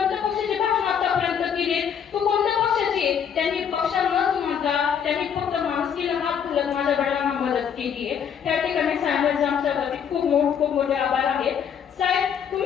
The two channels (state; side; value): quieter; right; 7.8 dB